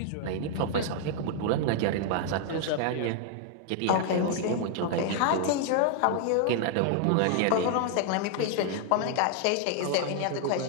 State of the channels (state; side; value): different; both; correlation 0.00